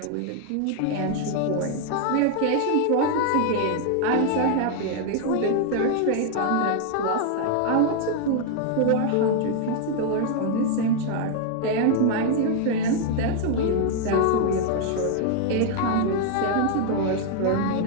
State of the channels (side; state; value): both; different; correlation 0.00